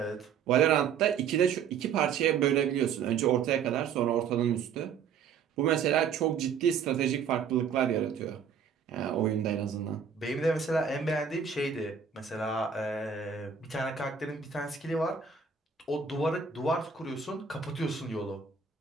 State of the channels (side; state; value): left; quieter; 6.8 dB